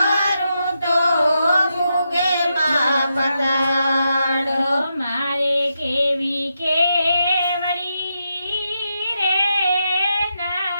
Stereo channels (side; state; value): both; inverted; correlation -0.84